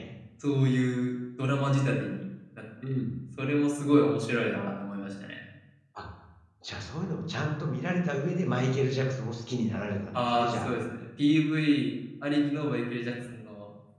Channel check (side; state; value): both; identical; correlation 1.00